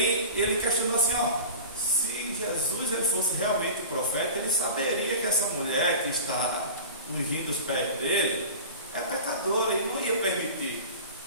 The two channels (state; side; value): inverted; both; correlation -0.34